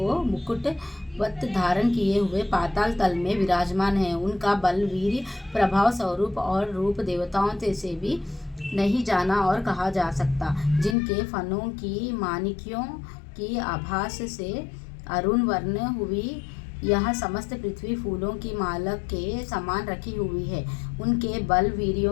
मुकुटवत धारण किए हुए पाताल तल में विराजमान है। उनका बल, वीर्य, प्रभाव, स्वरूप और रूप देवताओं से भी नहीं जाना और कहा जा सकता। जिनके फनों की माणिक्यों की आभास से अरुण वर्ण हुई यह समस्त पृथ्वी फूलों की माला के समान रखी हुई है। उनके बल,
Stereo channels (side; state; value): right; drops out; at 11.0 s